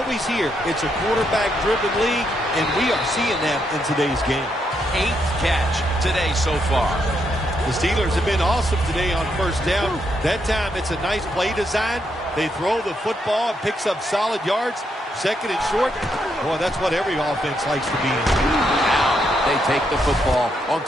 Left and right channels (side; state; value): both; normal; correlation 0.78